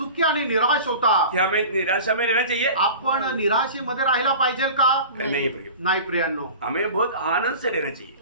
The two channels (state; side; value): inverted; both; correlation -0.37